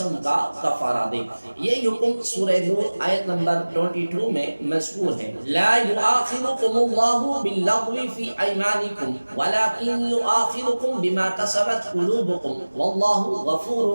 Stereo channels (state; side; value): inverted; both; correlation -1.00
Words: کا کفارہ دے۔ یہ حکم سورہ نور آیت نمبر 22 میں مذکور ہے۔ لا یؤاخذکم اللہ باللغو فی ایمانکم ولکن یؤاخذکم بما کسبت قلوبکم واللہ